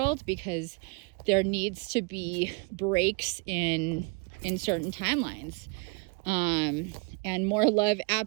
because there needs to be breaks in certain timelines, and more love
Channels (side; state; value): left; quieter; 30.8 dB